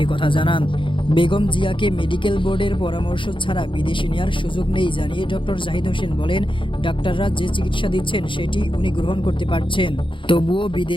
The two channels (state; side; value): late; right; 0.24 ms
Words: একথা জানান। বেগম জিয়াকে মেডিকেল বোর্ডের পরামর্শ ছাড়া বিদেশে নেওয়ার সুযোগ নেই জানিয়ে ডক্টর জাহিদ হোসেন বলেন, ডাক্তাররা যে চিকিৎসা দিচ্ছেন সেটি উনি গ্রহণ করতে পারছেন। তবুও